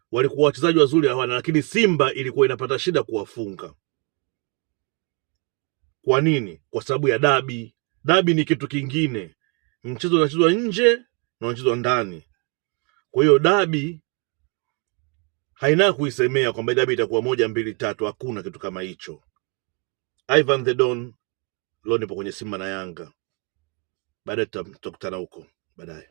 Walikuwa wachezaji wazuri hawana, lakini Simba ilikuwa inapata shida kuwafunga. Kwa nini? Kwa sababu ya dabi. Dabi ni kitu kingine. Mchezo unachezwa nje na unachezwa ndani. Kwa hiyo dabi haina kuisemea kwamba dabi itakuwa 1, 2, 3. Hakuna kitu kama hicho. Ivan the Don, leo nipo kwenye Simba na Yanga. Baadaye tutakutana huko baadaye.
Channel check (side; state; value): left; quieter; 33.0 dB